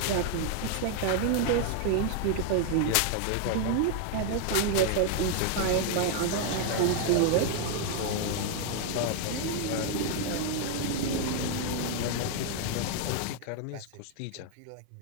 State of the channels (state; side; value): different; both; correlation 0.00